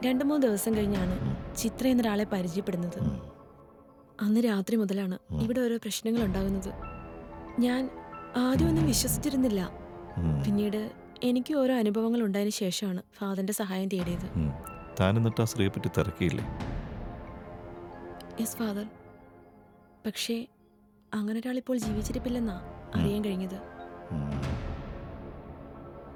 2-3 ദിവസം കഴിഞ്ഞാണ് ചിത്ര എന്നൊരാളെ പരിചയപ്പെടുന്നത്. അന്ന് രാത്രി മുതലാണ് ഇവിടെ ഓരോ പ്രശ്നങ്ങൾ ഉണ്ടാകുന്നത്. ഞാൻ ആദ്യമൊന്നും വിശ്വസിച്ചിരുന്നില്ല. പിന്നീട് എനിക്ക് ഓരോ അനുഭവങ്ങൾ ഉണ്ടായതിനു ശേഷമാണ് ഫാദറിന്റെ സഹായം തേടിയത്. താൻ എന്നിട്ട് ആ സ്ത്രീയെ പറ്റി തിരക്കിയില്ലേ? Yes father. പക്ഷേ അങ്ങനെ ഒരാൾ ഇപ്പോൾ ജീവിച്ചിരിപ്പില്ലെന്നാ അറിയാൻ കഴിഞ്ഞത്.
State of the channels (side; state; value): both; identical; correlation 1.00